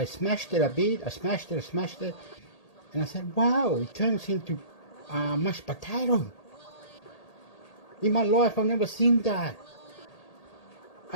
smashed it a bit. I smashed it, and I said, "Wow! It turns into mashed potato." In my life, I've never seen that.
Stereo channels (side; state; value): right; late; 1.8 ms